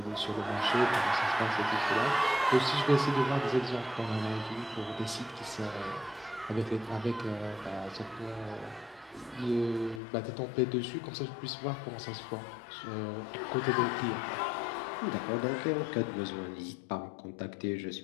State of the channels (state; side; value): drops out; right; at 10.0 s